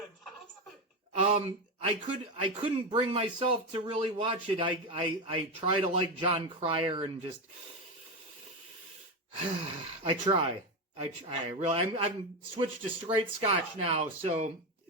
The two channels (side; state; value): both; normal; correlation 0.14